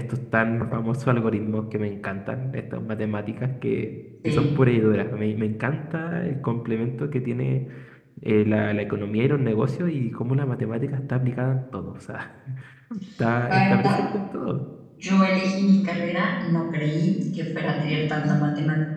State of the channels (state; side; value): identical; both; correlation 1.00